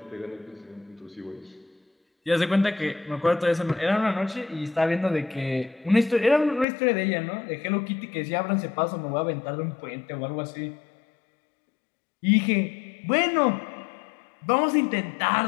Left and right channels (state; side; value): drops out; right; at 6.7 s